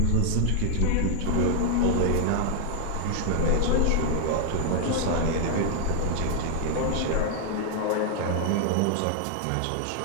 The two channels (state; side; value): different; both; correlation 0.00